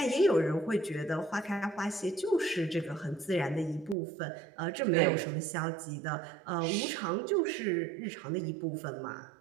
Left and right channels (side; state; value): left; drops out; at 4.0 s